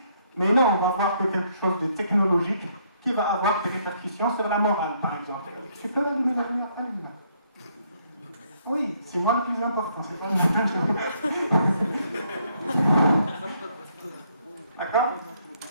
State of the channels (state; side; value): inverted; both; correlation -0.70